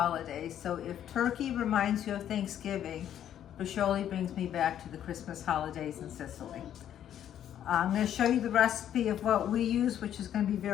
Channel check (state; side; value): quieter; right; 10.4 dB